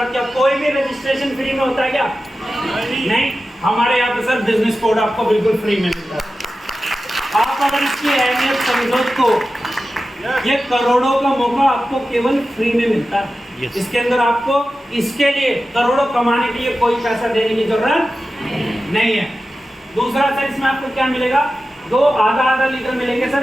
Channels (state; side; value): normal; both; correlation 0.93